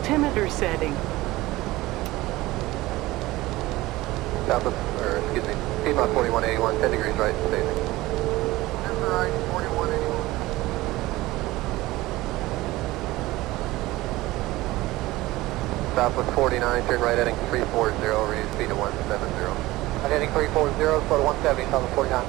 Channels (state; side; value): quieter; left; 18.6 dB